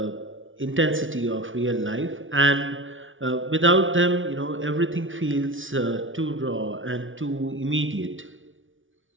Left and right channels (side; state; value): left; late; 0.57 ms